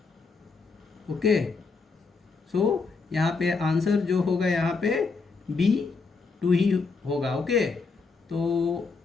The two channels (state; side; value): quieter; right; 4.4 dB